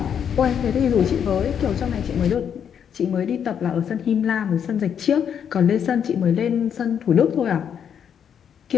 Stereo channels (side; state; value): right; quieter; 8.2 dB